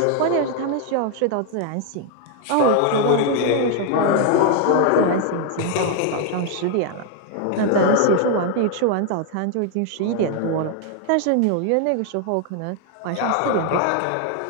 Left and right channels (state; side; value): different; both; correlation 0.00